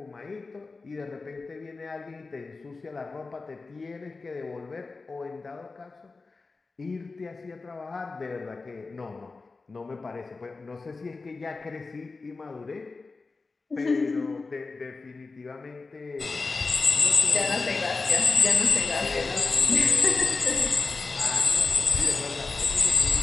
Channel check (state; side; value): quieter; right; 3.9 dB